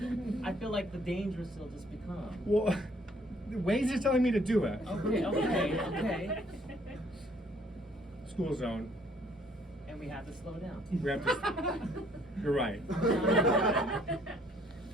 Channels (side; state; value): both; normal; correlation 0.62